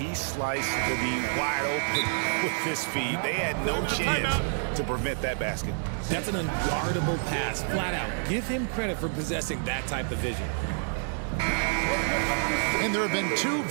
sliced to be wide open with his feed. They had no chance to prevent that basket. That's an unguardable pass, flat out. Give him credit for possessing that type of vision. And there have been 2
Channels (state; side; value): silent; left; digital silence